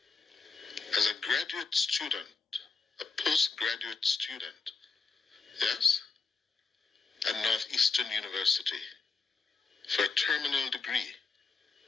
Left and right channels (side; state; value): right; quieter; 4.3 dB